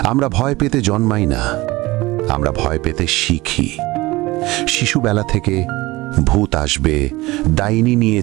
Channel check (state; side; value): quieter; left; 20.3 dB